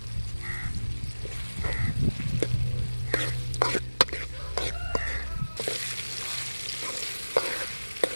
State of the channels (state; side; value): inverted; both; correlation -1.00